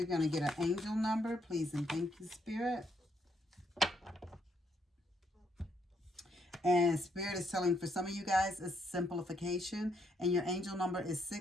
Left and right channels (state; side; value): normal; both; correlation 0.74